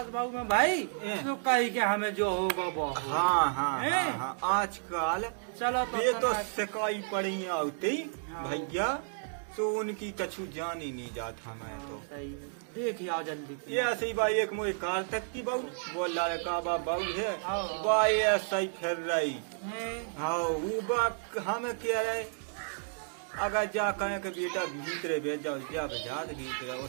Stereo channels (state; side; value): silent; left; digital silence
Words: बाबू में भाई तो कही के हमें जो होगा वो होगा। हाँ आजकल चलो ये तो तनक- सिकाई पड़ी आती हाँ। भैया तो उनकी कछु जान ही नहीं जाता मैं तो। सही है। देख आओ जल्दी। ये ऐसे ही भाई एक मुझे कार तक की बहू बोल रहा है का बहू है हाँ। भाई ऐसा ही फिर रही हैं? हाँ वो बात हमें कह रहे अगर जा कहे के बेटा भीतरे भेज जाओ जा बजा भीतरे और